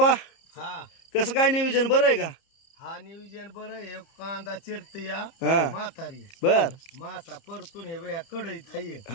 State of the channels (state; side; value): late; right; 30 ms